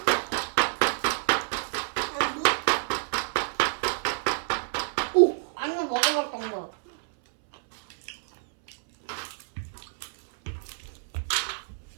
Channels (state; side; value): silent; left; 59 dB below the other